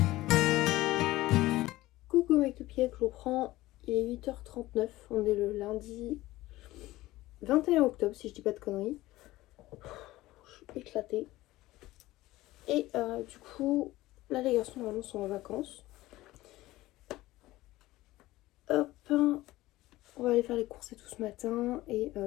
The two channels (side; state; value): right; quieter; 17.5 dB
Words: Coucou mes cupcakes, je vous reprends. Il est 8h39. On est le lundi 21 octobre, si je dis pas de conneries. Je suis éclatée. Et du coup, là les garçons normalement sont en vacances. Hop, on va aller faire les courses et tout ce matin. Et